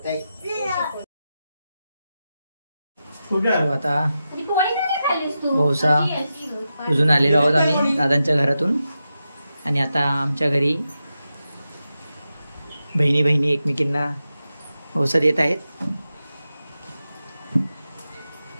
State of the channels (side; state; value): both; inverted; correlation -0.90